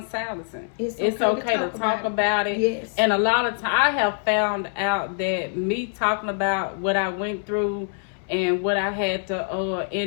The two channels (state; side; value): silent; right; 62 dB below the other